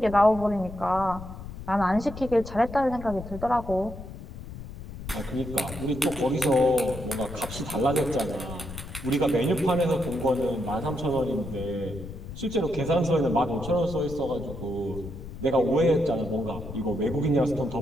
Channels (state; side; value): noise; left; rumble, 11 dB below the sound